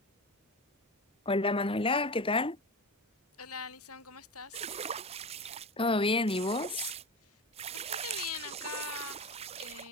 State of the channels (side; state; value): both; normal; correlation 0.25